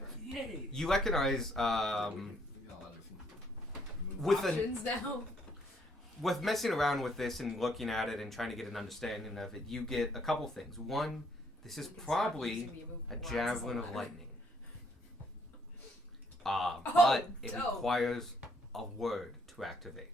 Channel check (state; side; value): normal; both; correlation 0.68